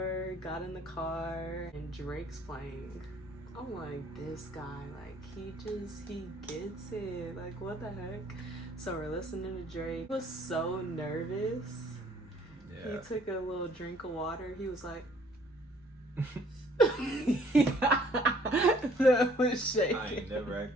got in the car, and Drake's playing. I'm like, this guy, like he gets it. Like what the heck? So we're listening to Drake. He was so nervous. Yeah. He took a little drink of water. He was like. That was shaking. I ain't never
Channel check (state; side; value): noise; left; rumble, 29 dB below the sound